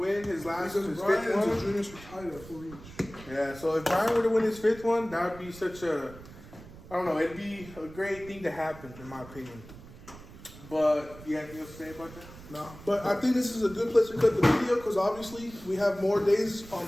his Because his Brian fifth and one, Junior's retired at 4 each. yeah. So if Brian were to win his 5th one, that would be such a, I don't know, it'd be a great thing to happen in my opinion. But you have anything else to say about that? No, but I think this is a good place to cut the video because obviously we have more days on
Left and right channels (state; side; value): noise; right; rumble, 18 dB below the sound